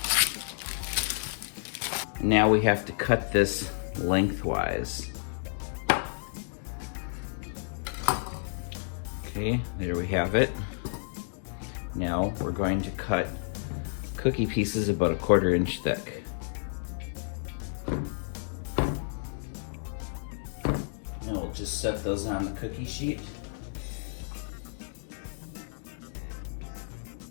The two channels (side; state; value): right; silent; digital silence